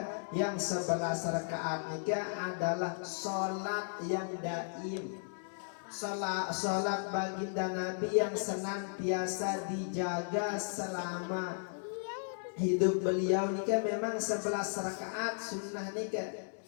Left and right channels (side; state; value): right; silent; digital silence